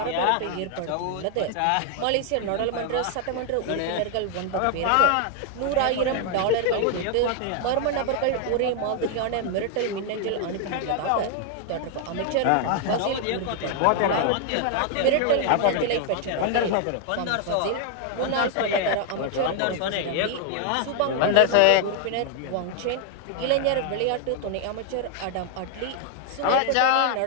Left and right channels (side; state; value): both; different; correlation 0.00